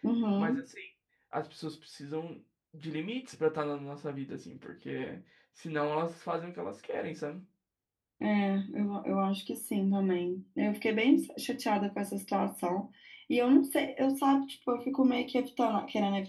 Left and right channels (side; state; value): both; identical; correlation 1.00